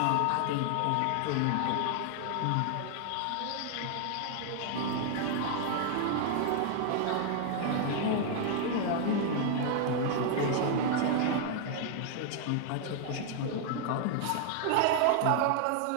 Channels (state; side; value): different; both; correlation 0.00